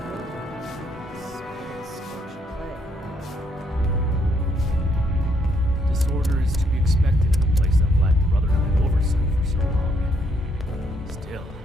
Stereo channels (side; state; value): both; normal; correlation 0.71